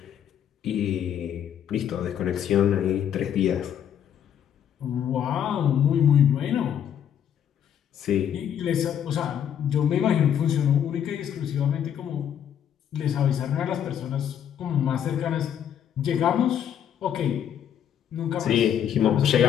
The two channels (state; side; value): quieter; right; 9.3 dB